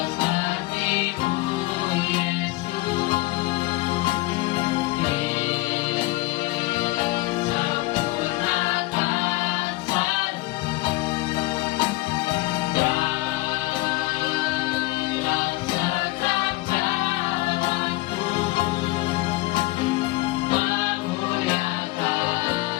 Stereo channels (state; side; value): quieter; right; 20.6 dB